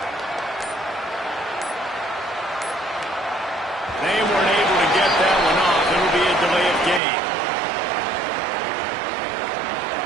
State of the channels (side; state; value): left; drops out; at 7.0 s